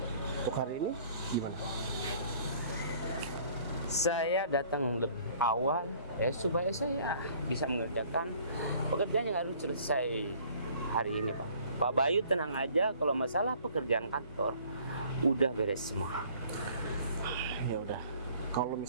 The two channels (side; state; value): both; inverted; correlation -0.55